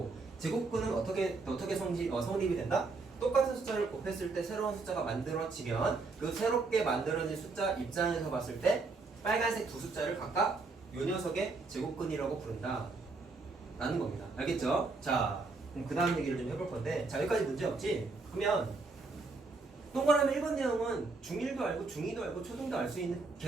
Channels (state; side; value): quieter; left; 3.9 dB